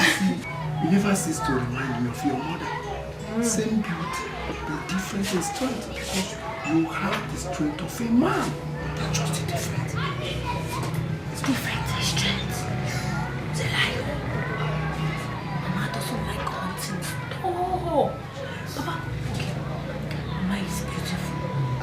You never cease to remind me of your mother. Same beauty, but different in strength, because you have the strength of a man. That's just different. It's different in strength. It's a lie. Mama doesn't like hunting. Oh, Papa, okay. Mama is beautiful.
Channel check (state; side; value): identical; both; correlation 1.00